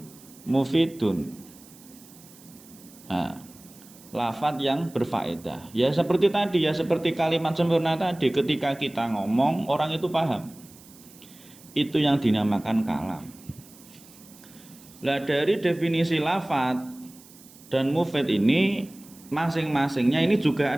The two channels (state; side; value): noise; right; hiss, 23 dB below the sound